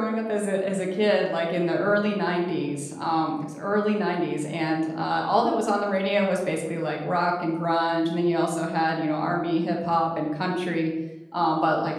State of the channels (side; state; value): both; identical; correlation 1.00